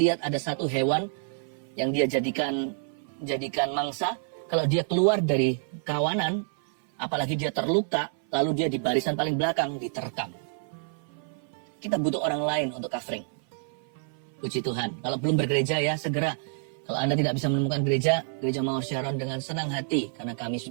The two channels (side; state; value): left; silent; 56 dB below the other